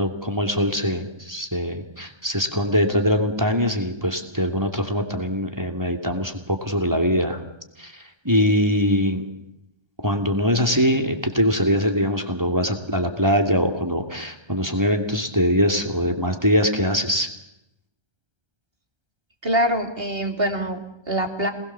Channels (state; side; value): late; left; 1.3 ms